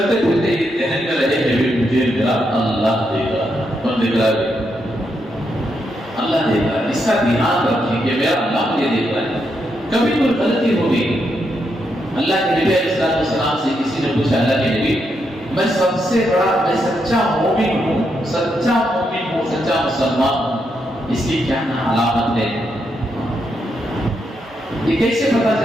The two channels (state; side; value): normal; both; correlation 0.81